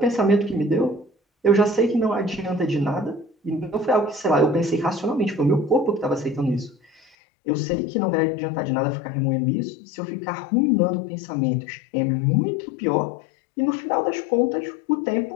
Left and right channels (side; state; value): right; drops out; at 7.0 s